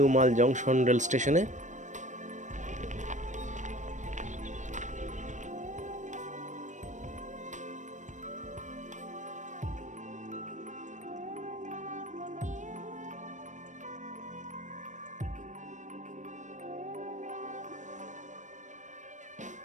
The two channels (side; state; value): left; late; 0.35 ms